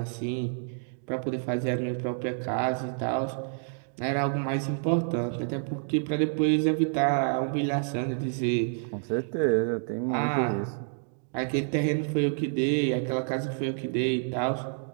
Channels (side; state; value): left; silent; digital silence